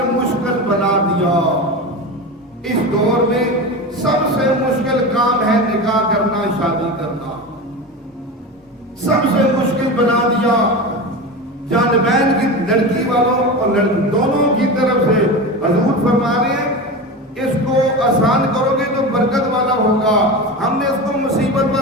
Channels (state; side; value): normal; both; correlation 0.25